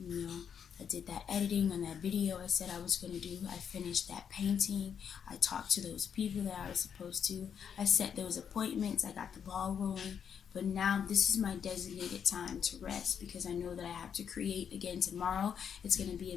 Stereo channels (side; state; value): right; quieter; 7.8 dB